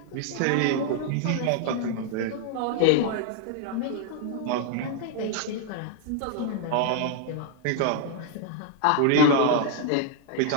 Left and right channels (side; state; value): both; different; correlation 0.00